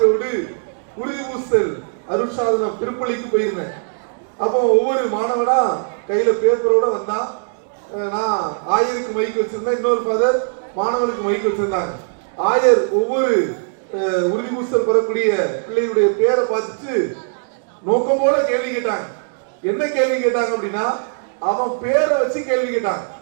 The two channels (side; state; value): left; silent; digital silence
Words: உறுதி பூசல் அருட்சாதனம் திருப்பலிக்கு போயிருந்தேன். அப்போ ஒவ்வொரு மாணவனா கையில பேப்பரோட வந்தா, நான் ஆயருக்கு மைக் வச்சிருந்தேன், இன்னொரு ஃபாதர் மாணவனுக்கு மைக் வச்சிருந்தாங்க. ஆயர் ஒவ்வொரு உறுதி பூசல் பெறக்கூடிய பிள்ளைகளுடைய பேரை பார்த்துட்டு நோக்கம் போல கேள்வி கேட்டாங்க. என்ன கேள்வி கேட்டாங்க அப்படின்னா, அவன் பேரை வச்சு கேள்வி கேட்டான்.